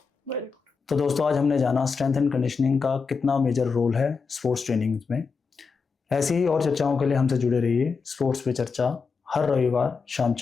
तो दोस्तों, आज हमने जाना स्ट्रेंथ एंड कंडीशनिंग का कितना मेजर रोल है स्पोर्ट्स ट्रेनिंग में। ऐसी ही और चर्चाओं के लिए हमसे जुड़े रहिए। स्पोर्ट्स पे चर्चा हर रविवार शाम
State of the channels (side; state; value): right; quieter; 5.1 dB